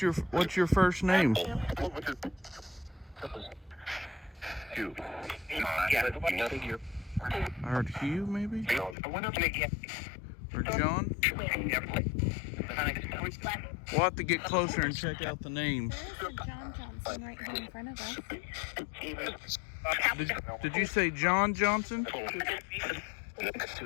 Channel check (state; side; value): drops out; right; at 9.0 s